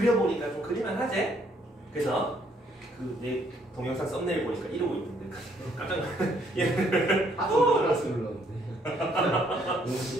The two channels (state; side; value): normal; both; correlation 0.68